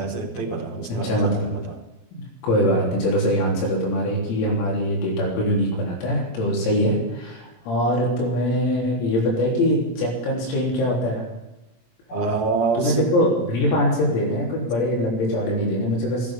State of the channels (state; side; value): late; right; 17 ms